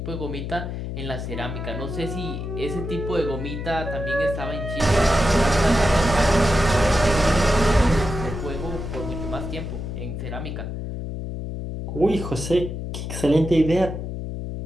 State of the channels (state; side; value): noise; left; hum, 6 dB below the sound